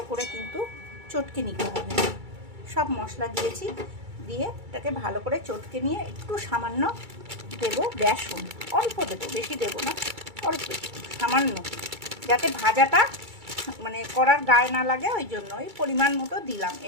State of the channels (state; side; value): late; left; 2.3 ms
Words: করে কিন্তু চটকে নিতে হবে। সব মশলা দিয়েছি, দিয়ে এটাকে ভালো করে চটকে নিয়ে একটু সামান্য দেবো বেসন, অল্প দেবো, বেশি দেবো না, অল্প সামান্য, যাতে ভাজাটা মানে করার গায়ে না লাগে, ওই জন্য ওই পরিমাণ মতো দিলাম।